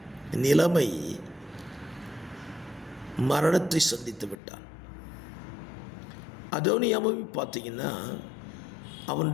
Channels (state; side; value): drops out; right; at 4.4 s